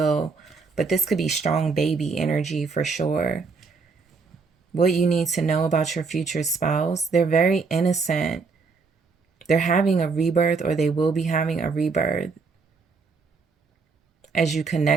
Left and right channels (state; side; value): quieter; left; 4.6 dB